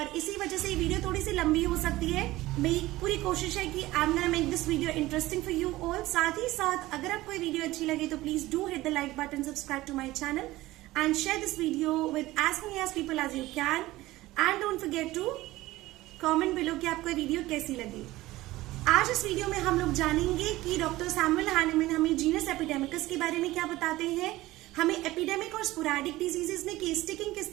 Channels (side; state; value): left; quieter; 17.7 dB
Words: इसी वजह से ये वीडियो थोड़ी सी लंबी हो सकती है. मेरी पूरी कोशिश है कि I am gonna make this video interesting for you all. साथ ही साथ अगर आपको ये वीडियो अच्छी लगे तो please do hit the like button, subscribe to my channel and share this video with as many as people as you can. And don't forget to comment below कि आपको ये वीडियो कैसी लगी. आज इस वीडियो में हम लोग जानेंगे कि डॉक्टर सैमुअल हैनेमन हमें जीनस एपिडेमिकस के बारे में क्या बताते हैं, हमें एपिडेमिक और स्पोराडिक डिजीजेस में केस टेकिंग किस